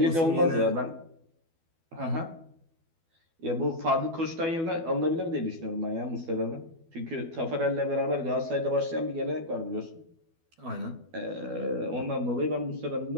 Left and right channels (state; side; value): late; left; 12 ms